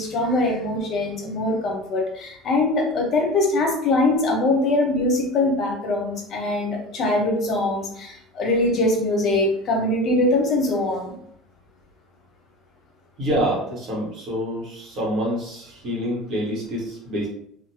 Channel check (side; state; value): both; normal; correlation 0.32